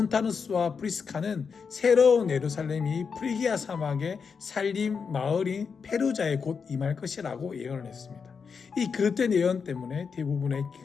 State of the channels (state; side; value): quieter; right; 5.8 dB